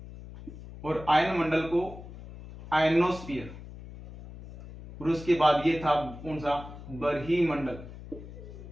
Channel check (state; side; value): noise; left; hum, 14 dB below the sound